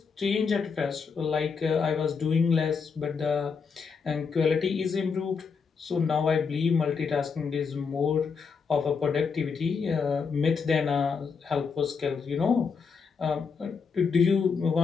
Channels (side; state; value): right; quieter; 5.6 dB